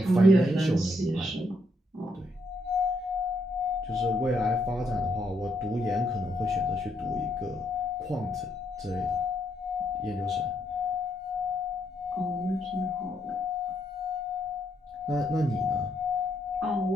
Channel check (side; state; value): both; normal; correlation 0.75